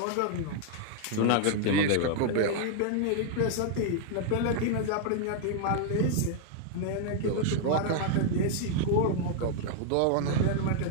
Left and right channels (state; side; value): different; both; correlation 0.00